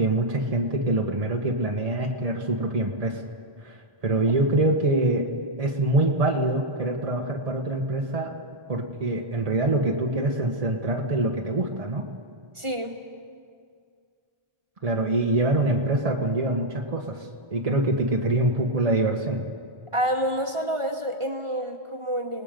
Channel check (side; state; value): left; late; 1.4 ms